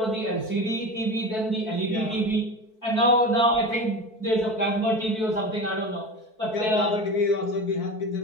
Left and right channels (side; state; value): right; late; 4.6 ms